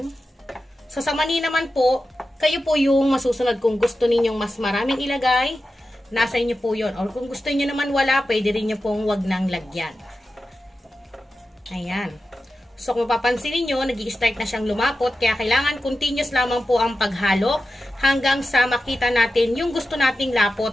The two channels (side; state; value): both; normal; correlation 0.92